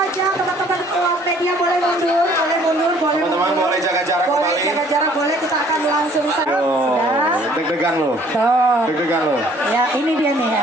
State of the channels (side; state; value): both; normal; correlation 0.58